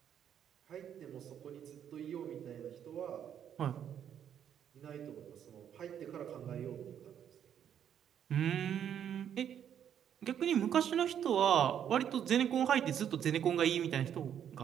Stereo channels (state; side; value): quieter; left; 9.2 dB